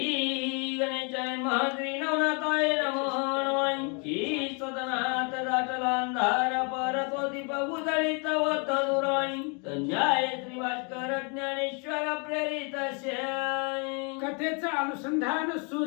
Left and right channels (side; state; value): right; quieter; 35.5 dB